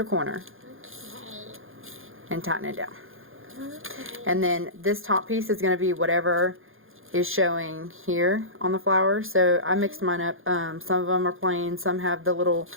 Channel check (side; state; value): left; late; 0.60 ms